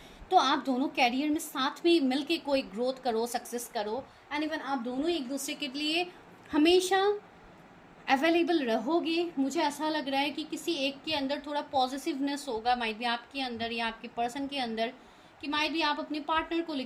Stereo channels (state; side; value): identical; both; correlation 1.00